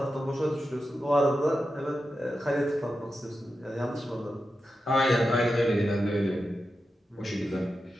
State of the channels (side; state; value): both; normal; correlation 0.90